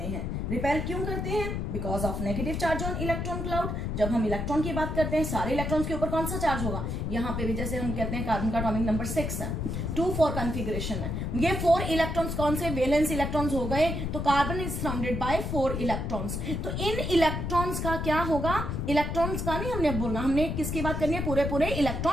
हैं. रिपेल क्यों करते हैं? Because of negative charge on electron cloud. जब हम इलेक्ट्रॉन की बात करते हैं सारे इलेक्ट्रॉन्स के ऊपर कौन सा चार्ज होगा, यहाँ पे भी जैसे हम कहते हैं कार्बन का एटॉमिक नंबर 6 है, 2-4 कॉन्फ़िगरेशन है. ये 4 इलेक्ट्रॉन्स कौन से वैलेंस इलेक्ट्रॉन्स हो गए. तो carbon is surrounded by 4 electrons. तो इन इलेक्ट्रॉन्स का क्या होगा, इलेक्ट्रॉन्स का नहीं हमने बोलना, हमने किसकी बात करनी है, पूरे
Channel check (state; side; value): noise; left; rumble, 2 dB below the sound